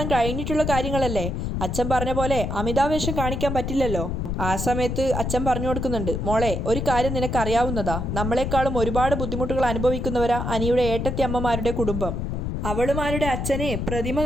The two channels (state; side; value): noise; left; rumble, 2 dB below the sound